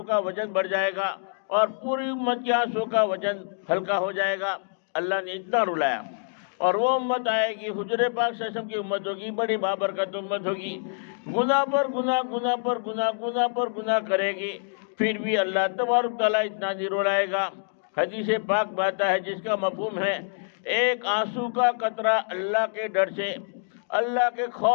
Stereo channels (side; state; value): right; silent; digital silence